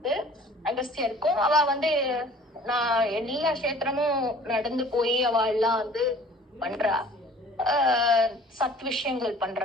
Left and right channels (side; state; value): both; normal; correlation 0.50